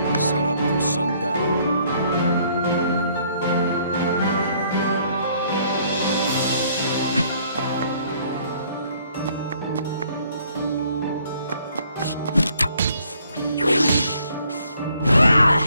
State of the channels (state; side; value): inverted; both; correlation -0.64